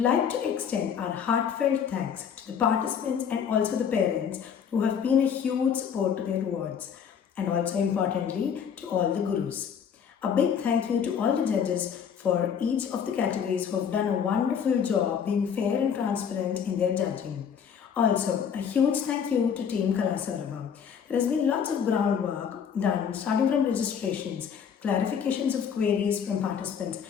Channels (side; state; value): right; quieter; 7.5 dB